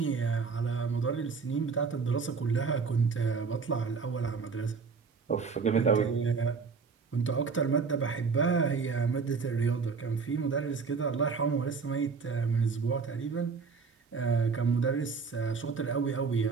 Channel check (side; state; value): left; quieter; 5.1 dB